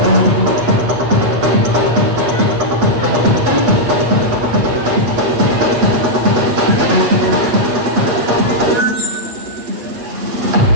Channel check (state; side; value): late; left; 8.2 ms